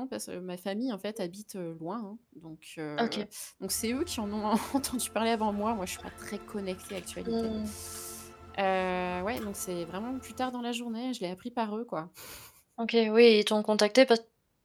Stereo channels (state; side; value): identical; both; correlation 1.00